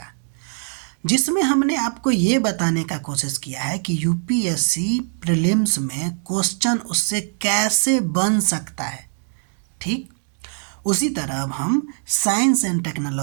जिसमें हमने आपको ये बताने का कोशिश किया है कि यूपीएससी प्रीलिम्स में क्वेश्चन उससे कैसे बन सकता है। ठीक उसी तरह अब हम साइंस एंड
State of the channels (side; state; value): left; silent; 60 dB below the other